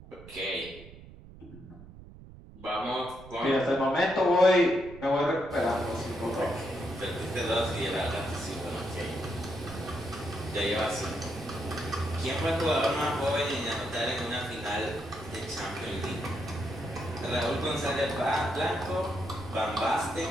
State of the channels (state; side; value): noise; right; rumble, 18 dB below the sound